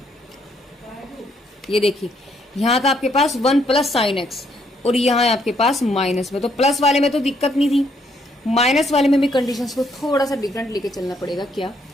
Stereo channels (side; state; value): both; normal; correlation 0.71